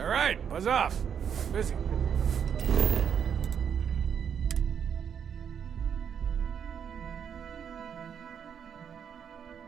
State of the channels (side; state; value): left; quieter; 7.9 dB